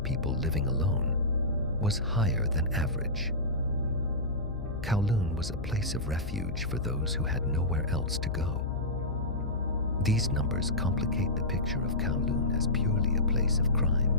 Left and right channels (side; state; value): left; noise; hum, 9 dB below the sound